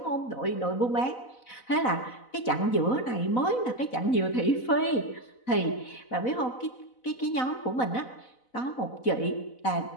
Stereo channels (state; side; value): late; right; 4.0 ms